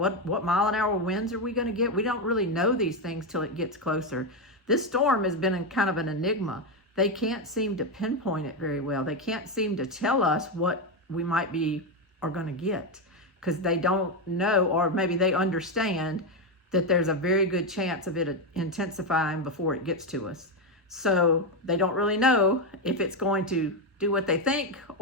mile-an-hour winds are we going to get, we don't really know these things till it gets closer. This storm has been kind of an enigma. They can't seem to pinpoint it very well. They can't seem to tell us what we might be are going to get, because they don't know, or maybe they understand that there's a very good chance of it intensifying before it gets to us. So they don't really know if it's going to do what they think,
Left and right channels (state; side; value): normal; both; correlation 0.08